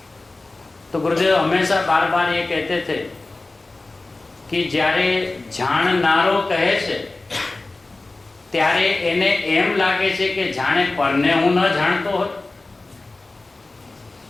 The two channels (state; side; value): quieter; right; 3.2 dB